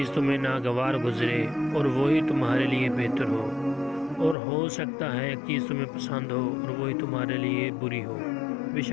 तुम्हें नागवार गुजरे और वही तुम्हारे लिए बेहतर हो, और हो सकता है एक चीज़ तुम्हें पसंद हो और वही तुम्हारे लिए बुरी हो।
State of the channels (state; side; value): drops out; right; at 4.4 s